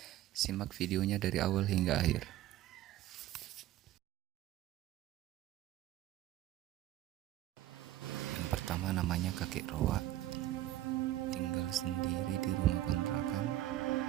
Simak videonya dari awal hingga akhir. Yang pertama namanya Kakek Roa, tinggal sendiri di rumah kontrakan,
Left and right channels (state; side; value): quieter; left; 14.3 dB